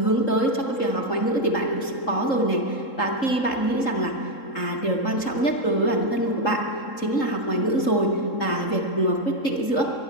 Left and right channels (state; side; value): late; right; 3.7 ms